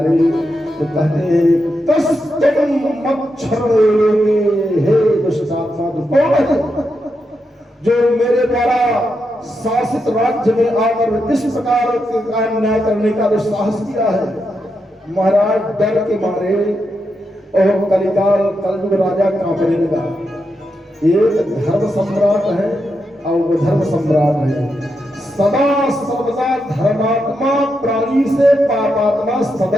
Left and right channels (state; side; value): normal; both; correlation 0.85